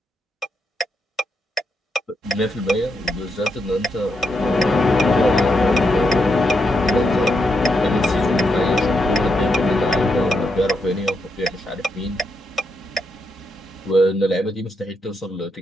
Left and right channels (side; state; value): both; normal; correlation 0.81